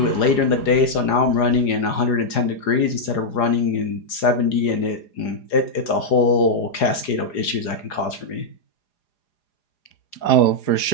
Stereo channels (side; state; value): right; late; 4.9 ms